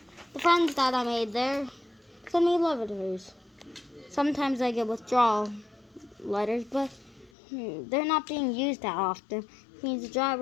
the friends that I made there sent me letters. Sometimes I get withdrawal letters, but they're not being used that often. It means the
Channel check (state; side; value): drops out; right; at 7.3 s